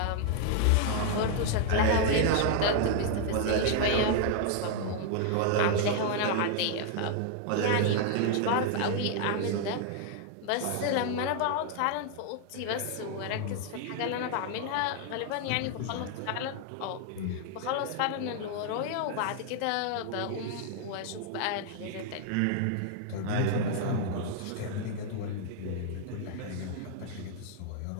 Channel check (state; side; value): different; both; correlation 0.00